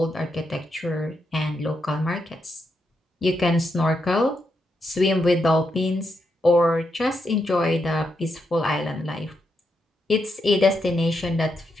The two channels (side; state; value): both; normal; correlation 0.82